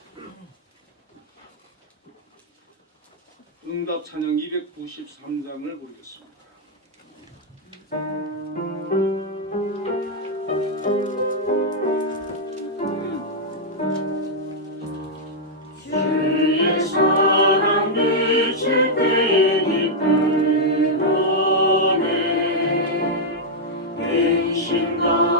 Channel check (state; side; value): normal; both; correlation -0.04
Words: 응답 찬양 293장을 보겠습니다. 주의 사랑 비칠 때 기쁨 오네 근심